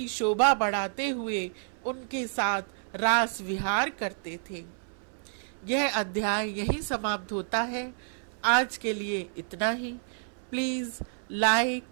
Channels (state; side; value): silent; left; 58 dB below the other